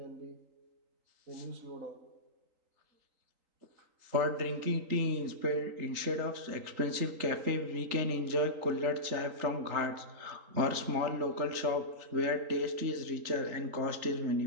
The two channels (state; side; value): late; left; 3.8 ms